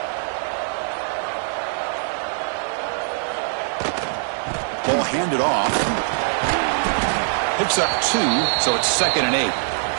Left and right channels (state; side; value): silent; left; 64 dB below the other